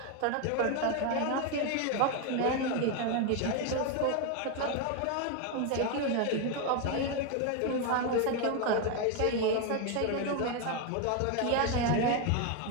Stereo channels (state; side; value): different; both; correlation 0.01